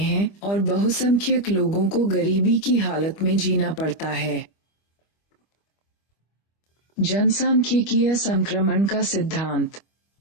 और बहुसंख्यक लोगों को गरीबी की हालत में जीना पड़ता है। जनसांख्यिकीय संक्रमण का सिद्धांत।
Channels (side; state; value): right; late; 25 ms